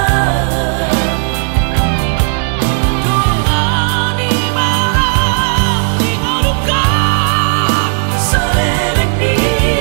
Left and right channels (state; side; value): silent; left; 69 dB below the other